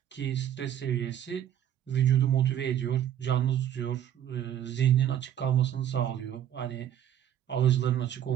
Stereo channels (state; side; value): quieter; left; 10.5 dB